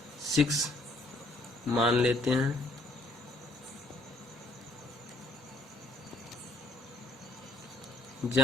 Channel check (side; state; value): both; normal; correlation 0.64